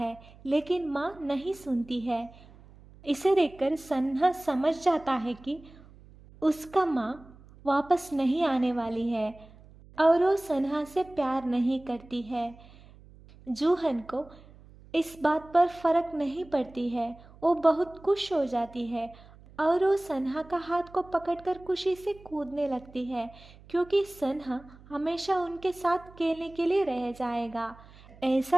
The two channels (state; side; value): noise; right; hum, 23 dB below the sound